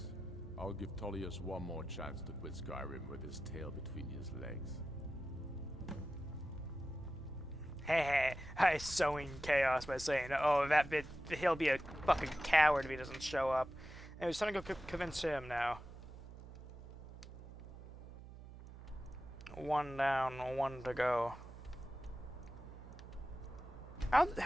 I'll give Tullius one more chance to quit Skyrim with his tail between his legs. Hey, I sowing chaos by saying, oh, that bit, he'll be a fucking coward if he doesn't show up. And it's time to go convince him now. One down, one to go.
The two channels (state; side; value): noise; right; hum, 14 dB below the sound